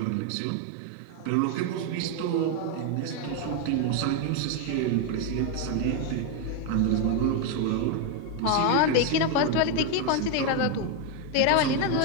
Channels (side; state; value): both; different; correlation 0.01